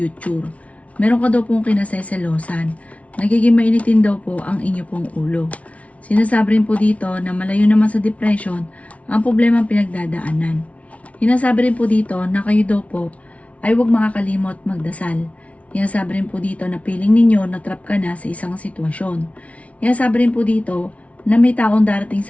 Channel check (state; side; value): late; right; 0.065 ms